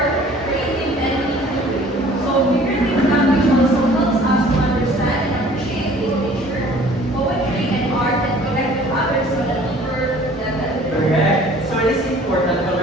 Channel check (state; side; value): normal; both; correlation 0.51